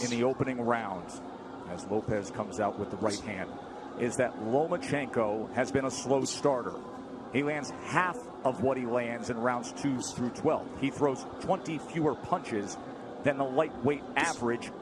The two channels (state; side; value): identical; both; correlation 1.00